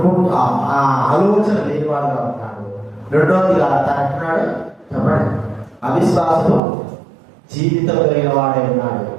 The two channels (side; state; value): left; drops out; at 6.6 s